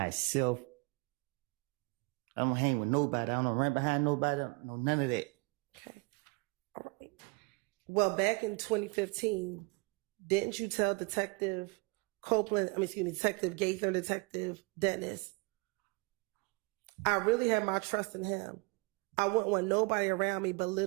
I don't hang with nobody. I don't run behind nobody. I don't know none of that. Okay. All right. Well, back in 2015, didn't you tell Detective Gaither and Detective Dennis, I really have my trust in him. I wouldn't want nobody around me but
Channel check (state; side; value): quieter; left; 27.8 dB